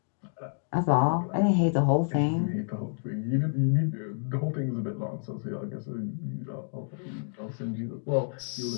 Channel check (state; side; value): silent; right; digital silence